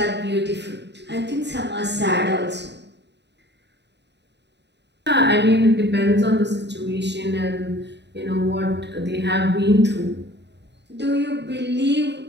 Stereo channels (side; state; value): left; late; 0.50 ms